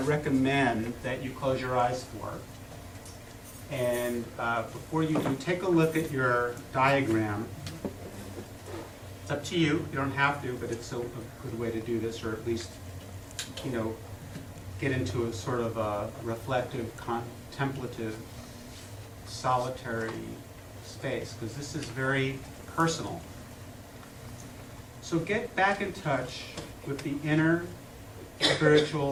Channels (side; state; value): both; identical; correlation 1.00